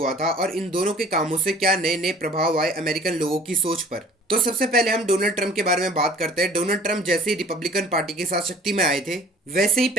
था और इन दोनों के कामों से क्या नए नए प्रभाव आए अमेरिकन लोगों की सोच पर। तो सबसे पहले हम डोनाल्ड ट्रंप के बारे में बात करते हैं। डोनाल्ड ट्रंप जैसे ही रिपब्लिकन पार्टी के साथ शक्ति में आए थे, वैसे ही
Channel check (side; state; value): both; normal; correlation 0.49